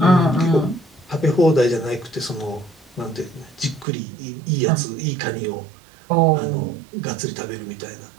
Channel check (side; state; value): left; drops out; at 3.9 s